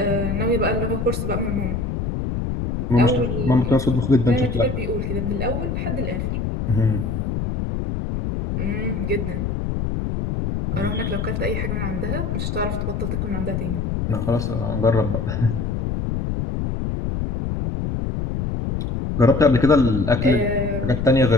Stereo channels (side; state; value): left; noise; rumble, 2 dB below the sound